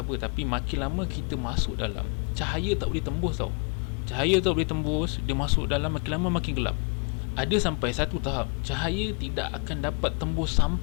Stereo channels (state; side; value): quieter; right; 36.3 dB